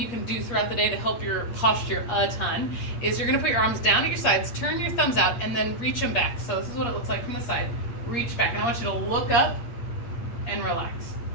can do throughout the day to help your posture a ton, is you're gonna put your arms down at your sides, turn your thumbs out, and then reach them back. So this is what it looks like from the side. Reach back, and I want you to look up and relax.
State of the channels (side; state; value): right; late; 8.5 ms